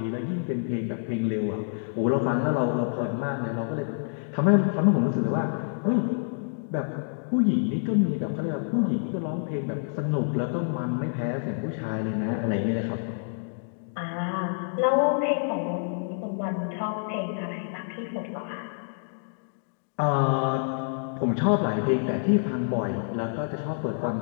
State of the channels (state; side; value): silent; right; digital silence